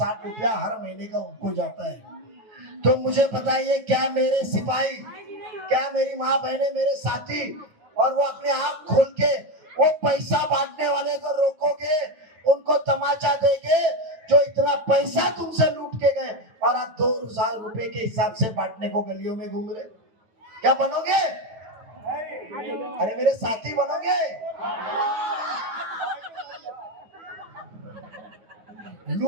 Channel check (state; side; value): late; left; 9.4 ms